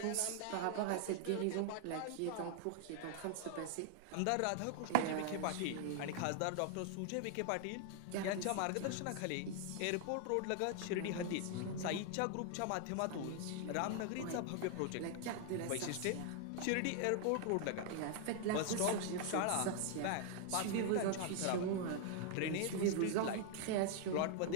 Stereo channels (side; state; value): both; different; correlation 0.00